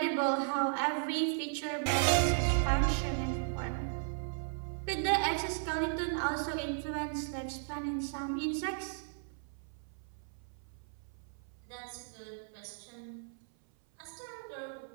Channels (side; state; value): left; silent; 54 dB below the other